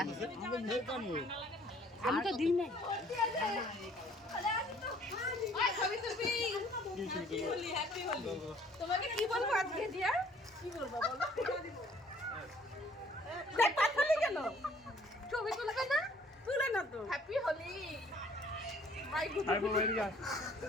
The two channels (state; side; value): normal; both; correlation 0.58